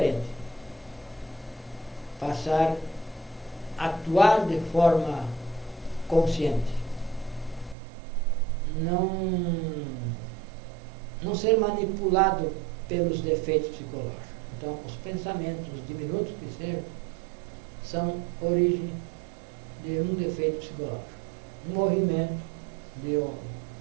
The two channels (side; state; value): left; drops out; at 7.8 s